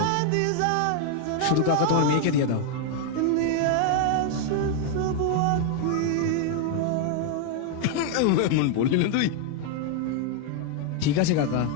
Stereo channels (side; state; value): both; different; correlation 0.00